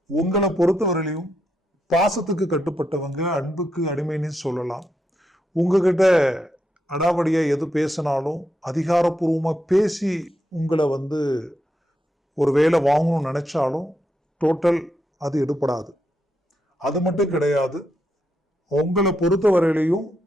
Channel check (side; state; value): both; normal; correlation 0.82